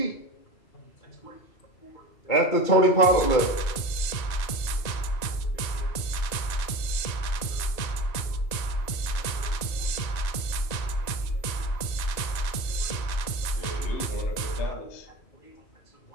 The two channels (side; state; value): right; late; 1.9 ms